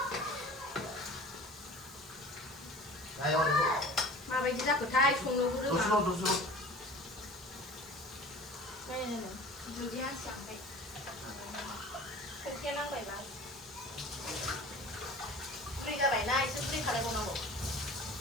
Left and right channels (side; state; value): both; normal; correlation 0.41